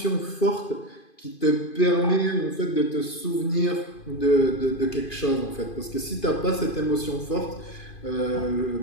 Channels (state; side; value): late; right; 2.5 ms